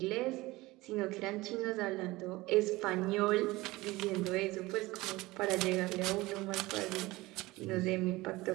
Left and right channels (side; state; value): left; quieter; 20.2 dB